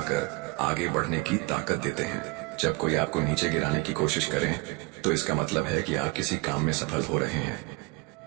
आगे बढ़ने की ताकत देते हैं। जब कोई आपको नीचे गिराने की कोशिश करे तो इसका मतलब है कि आप किसी काम में सफल हो रहे हैं।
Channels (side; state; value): left; quieter; 25.1 dB